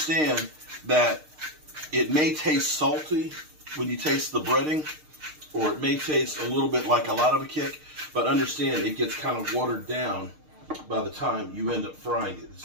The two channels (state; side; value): late; left; 6.5 ms